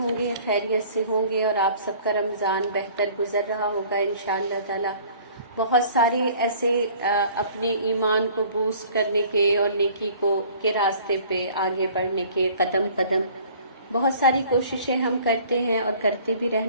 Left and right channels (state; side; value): inverted; both; correlation -0.52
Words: گے، خیریت سے ہوں گے، اور آپ سب کا رمضان بہتر گزر رہا ہوگا انشاءاللہ تعالی۔ بہت سارے ایسے اپنے ایمان کو بوسٹ کرنے کے اور نیکی کے راستے پہ آگے بڑھنے کے قدم قدم بہت ساری کوششیں ہم کرتے ہیں اور کرتے بھی